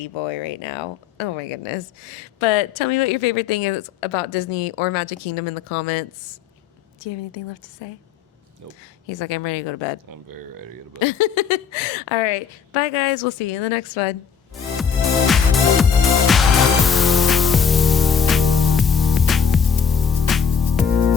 boy right now. Oh my goodness. But tell me what your favorite thing is about Disney or Magic Kingdom in the comments. Do you have anything left to say? Nope. He's like, I'm ready to go to bed. I'm very ready to go to bed. All right. Bye, guys. We'll see you in the next one.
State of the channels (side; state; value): right; quieter; 6.7 dB